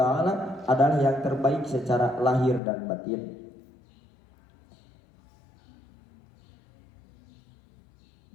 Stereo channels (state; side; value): drops out; right; at 2.6 s